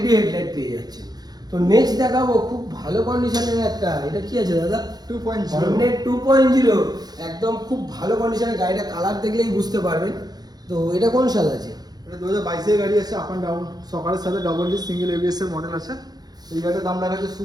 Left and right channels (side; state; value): left; late; 0.19 ms